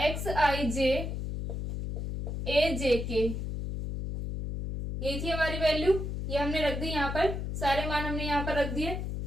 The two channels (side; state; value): left; noise; hum, 4 dB below the sound